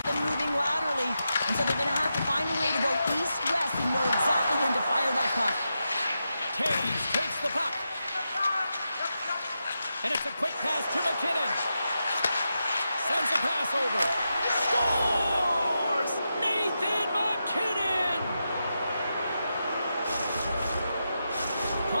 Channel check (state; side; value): inverted; both; correlation -0.88